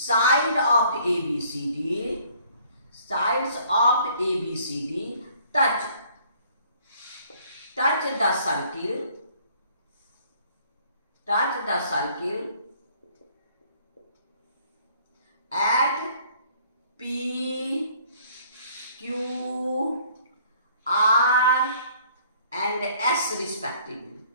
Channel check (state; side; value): inverted; both; correlation -0.59